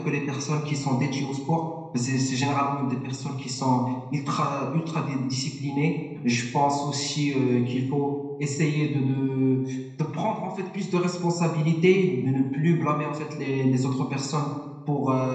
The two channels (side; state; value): both; identical; correlation 1.00